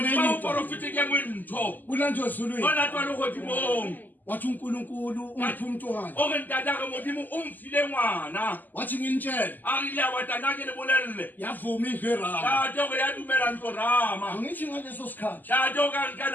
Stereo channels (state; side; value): late; right; 0.086 ms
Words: enye into kulanjwe ezulwini wathi uNkulunkulu ungiphi umntwana wathi nginitshele yavuma iVerama angithi ngaleso sikhathi